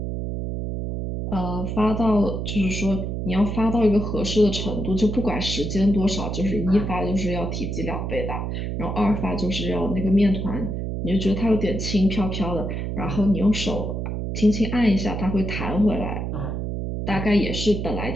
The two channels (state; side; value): noise; right; hum, 3 dB below the sound